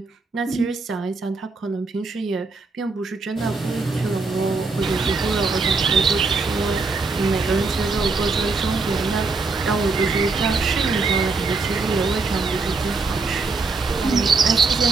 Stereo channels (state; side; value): quieter; left; 4.0 dB